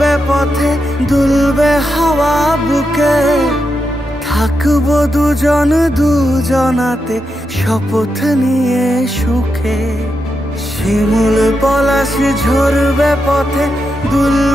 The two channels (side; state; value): both; normal; correlation 0.86